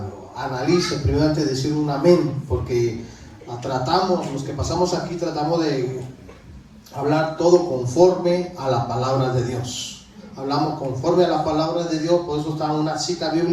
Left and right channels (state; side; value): identical; both; correlation 1.00